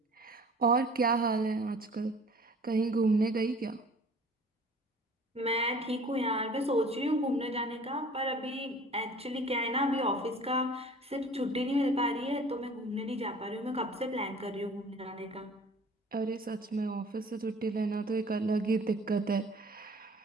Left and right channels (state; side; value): normal; both; correlation 0.47